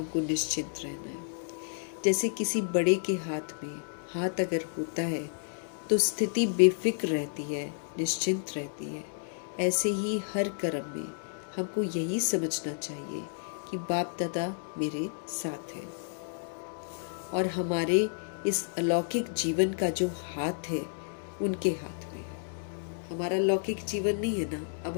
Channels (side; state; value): right; silent; digital silence